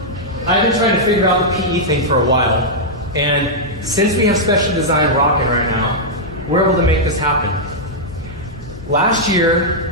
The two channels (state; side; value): noise; left; hum, 17 dB below the sound